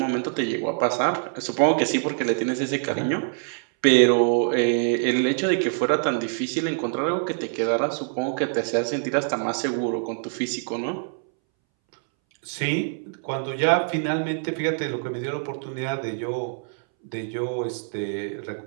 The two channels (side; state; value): left; silent; 62 dB below the other